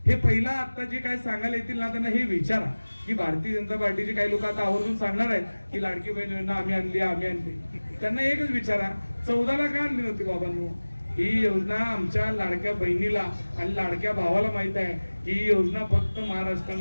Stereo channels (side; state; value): both; inverted; correlation -1.00